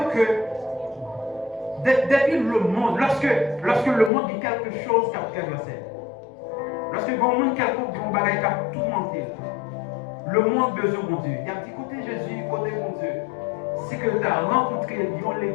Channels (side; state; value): right; drops out; at 4.1 s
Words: que depuis le monde, lorsque le monde dit quelque chose qui a traversé, lorsque le monde quelconque dit un bagage qui a tout menté, le monde besoin de Dieu. Il y a un petit côté Jésus, côté mon Dieu. C'est que tu as rencontré les